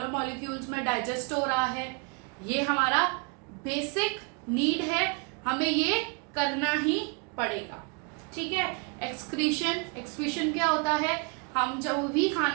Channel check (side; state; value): left; quieter; 34.8 dB